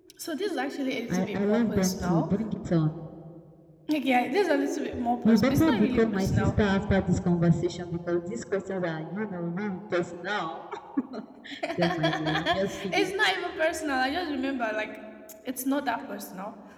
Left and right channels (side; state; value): both; identical; correlation 1.00